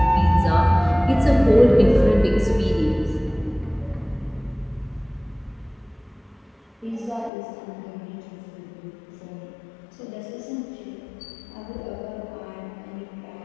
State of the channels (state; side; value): drops out; right; at 7.3 s